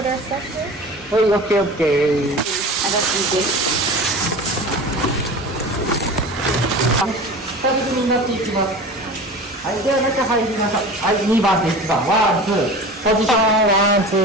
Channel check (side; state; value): both; normal; correlation 0.35